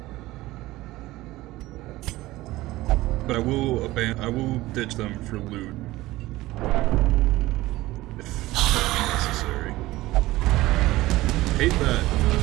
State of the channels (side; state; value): left; quieter; 17.9 dB